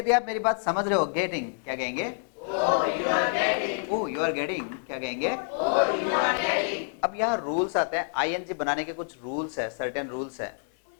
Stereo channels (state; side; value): silent; right; 60 dB below the other